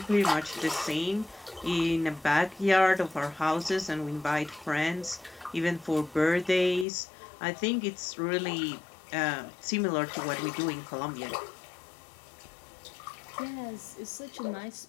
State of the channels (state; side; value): drops out; right; at 6.9 s